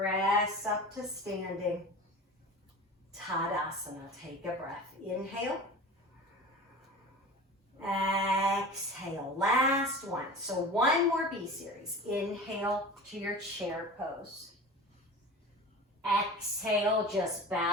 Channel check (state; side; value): normal; both; correlation 0.35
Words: up to standing. Tadasana. Take a breath. Inhale. Exhale. Last one. So one more B series. Inhale to your chair pose. Exhale, just